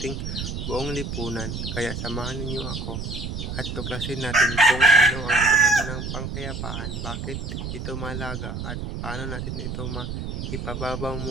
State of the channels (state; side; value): noise; right; rumble, 5 dB below the sound